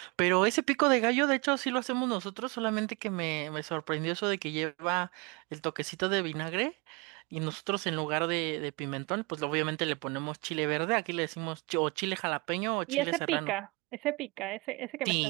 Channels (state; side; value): quieter; left; 27.8 dB